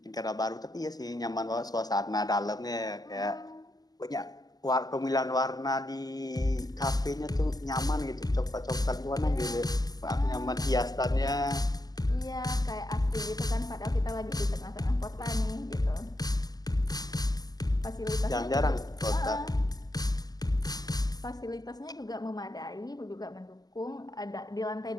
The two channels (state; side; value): late; right; 0.19 ms